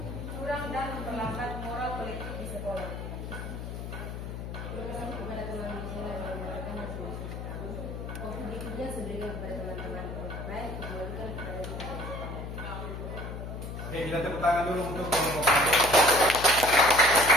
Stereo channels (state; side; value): noise; left; hum, 7 dB below the sound